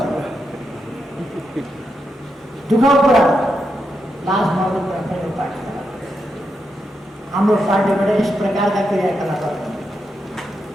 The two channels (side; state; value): both; normal; correlation 0.84